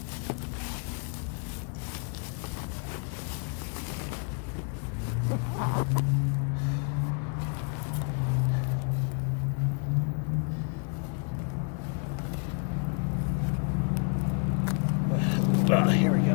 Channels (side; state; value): right; quieter; 39.2 dB